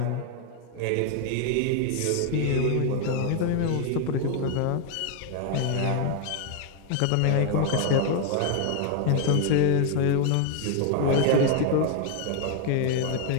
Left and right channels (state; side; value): different; both; correlation 0.01